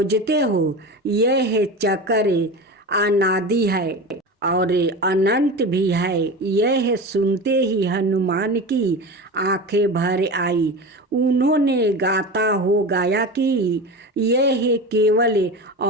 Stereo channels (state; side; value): normal; both; correlation 0.28